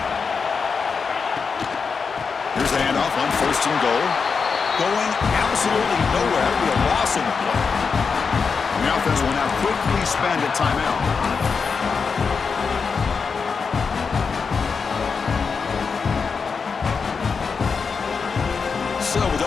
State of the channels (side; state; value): right; quieter; 5.4 dB